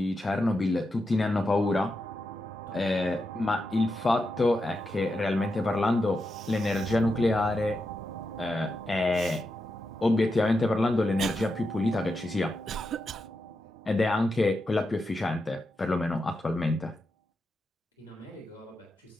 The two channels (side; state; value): both; normal; correlation 0.87